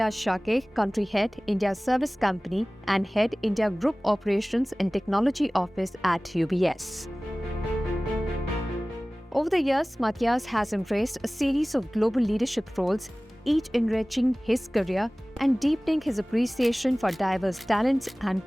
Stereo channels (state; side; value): normal; both; correlation 0.98